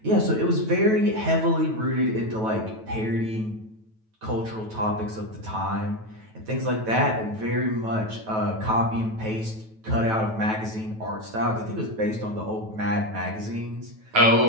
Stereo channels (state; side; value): late; left; 9.2 ms